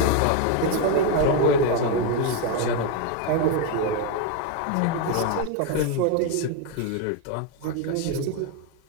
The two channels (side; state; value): both; different; correlation 0.01